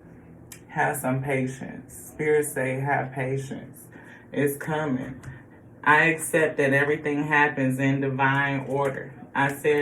Have some patience. Spirit say, have patience. It's coming. I accept that everything happens in divine order. I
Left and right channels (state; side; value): identical; both; correlation 1.00